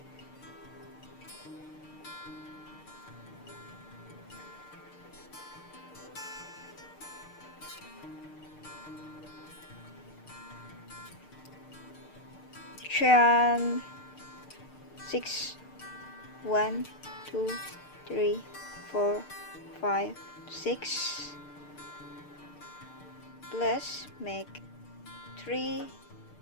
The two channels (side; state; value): right; late; 6.6 ms